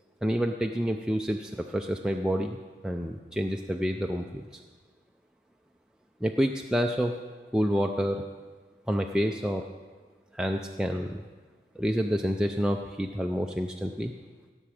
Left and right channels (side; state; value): both; normal; correlation 0.92